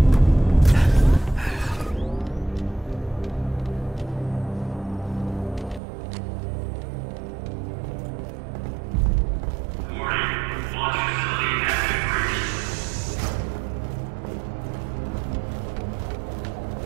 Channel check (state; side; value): drops out; left; at 5.8 s